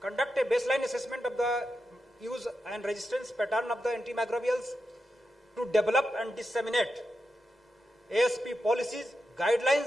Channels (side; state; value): both; normal; correlation 0.88